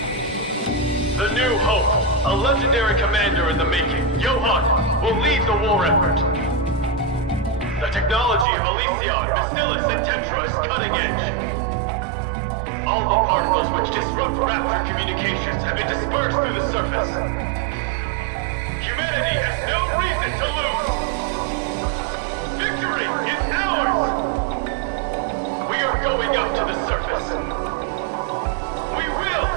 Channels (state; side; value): drops out; left; at 8.5 s